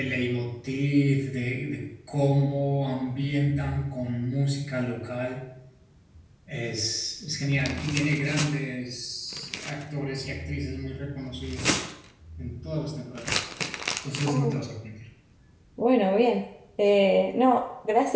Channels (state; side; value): identical; both; correlation 1.00